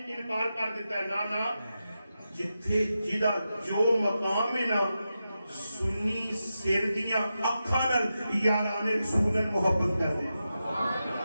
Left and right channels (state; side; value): inverted; both; correlation -0.90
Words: انکار کر دیتا ہے نہ جتھے جدا جو مقام ہے نا سنی سر دیاں اکھاں نال یاران رسول محبت کر دے